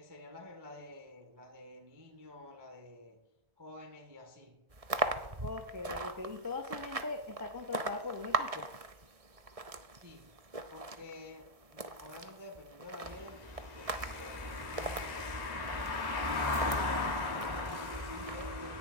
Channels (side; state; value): left; late; 1.6 ms